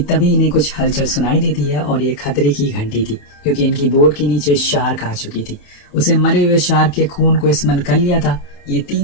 इन्हें कुछ हलचल सुनाई देती है और ये खतरे की घंटी थी क्योंकि इनकी बोट के नीचे शार्क आ चुकी थी। उसे मरे हुए शार्क के खून को स्मेल कर लिया था। ये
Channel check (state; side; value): late; right; 28 ms